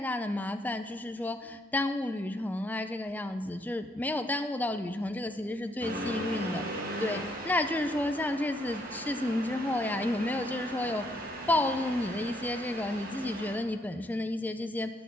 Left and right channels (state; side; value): normal; both; correlation 0.72